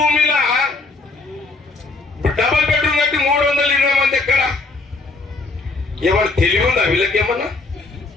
డబుల్ బెడ్రూమ్ కట్టి 320 మంది ఎక్కడ ఏమన్నా తెలివి ఉందా వీళ్ళకేమన్నా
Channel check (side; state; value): right; quieter; 3.5 dB